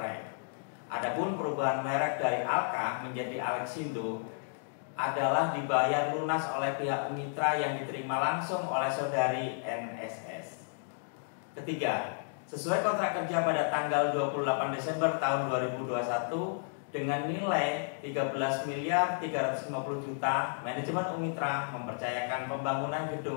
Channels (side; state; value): right; silent; digital silence